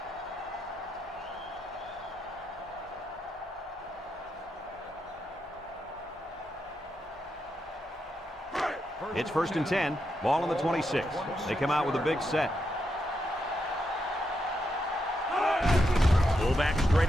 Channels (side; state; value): both; normal; correlation 0.83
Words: It's first and 10, ball on the 26. They come out with a big set. Fullback straight